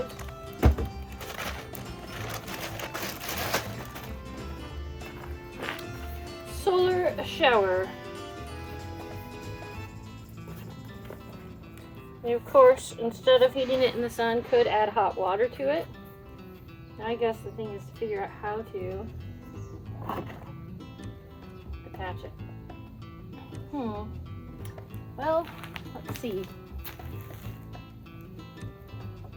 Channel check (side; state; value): both; identical; correlation 1.00